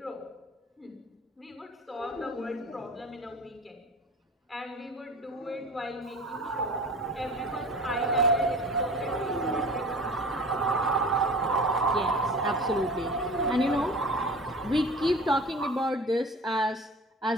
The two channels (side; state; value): both; normal; correlation 0.39